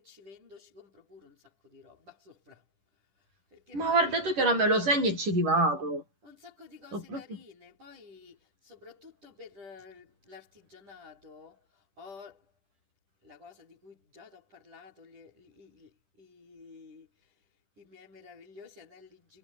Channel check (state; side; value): late; left; 10 ms